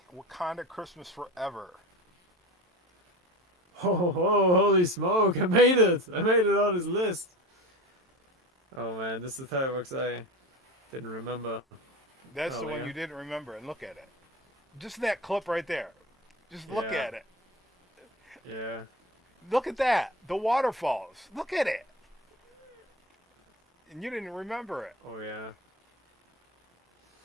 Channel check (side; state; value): both; normal; correlation 0.30